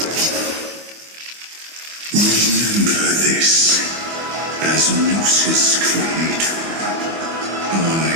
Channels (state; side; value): late; left; 25 ms